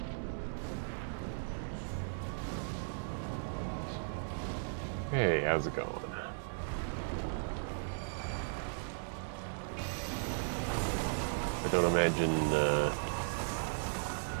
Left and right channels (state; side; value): silent; left; digital silence